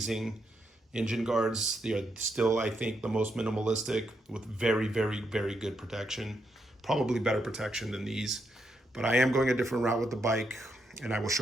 engine guards. They are still, I think, the most minimalistic with very, very, very good protection. Probably better protection than these. But I am going a different route with the bike, and I will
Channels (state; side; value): normal; both; correlation 0.80